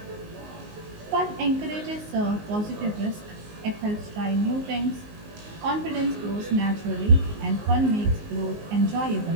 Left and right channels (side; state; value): left; late; 19 ms